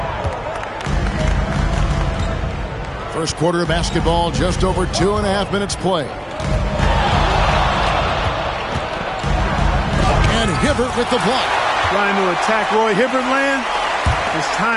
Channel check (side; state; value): both; identical; correlation 1.00